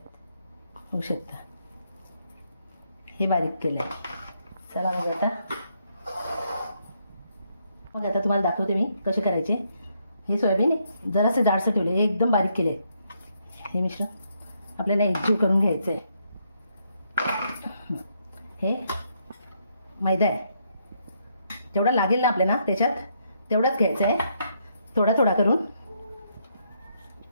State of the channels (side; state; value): both; inverted; correlation -0.75